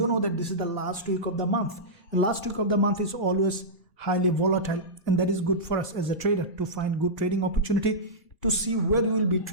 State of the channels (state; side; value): normal; both; correlation -0.13